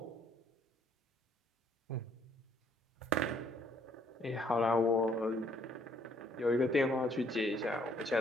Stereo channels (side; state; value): both; normal; correlation 0.65